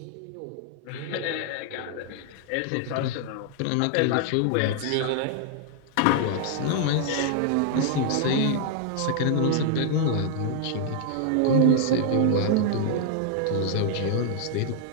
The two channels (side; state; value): both; different; correlation -0.01